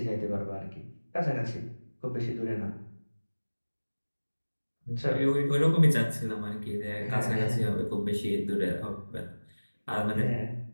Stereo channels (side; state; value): both; inverted; correlation -1.00